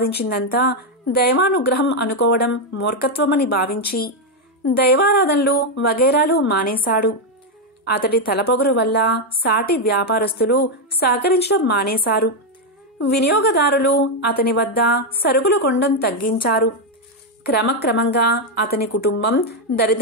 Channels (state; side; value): normal; both; correlation 0.02